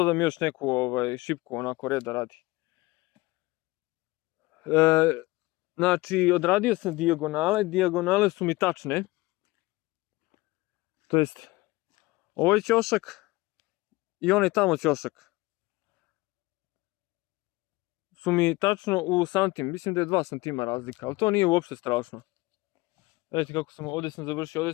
još neku šipku onako reda radi. Znači odradio sam dijagonale, dijagonale su mi tačne. To jest ovaj ćošak i onaj tamo ćošak su mi tačno u santim, mislim da je 2 cm razlika, ali to nije uopšte strašno. Vidite kako sam, ovdje sam završio, ovdje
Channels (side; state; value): right; quieter; 21.3 dB